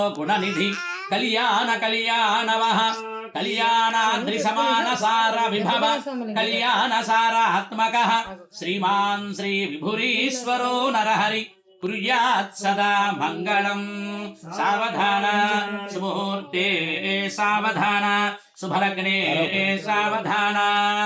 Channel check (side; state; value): both; identical; correlation 1.00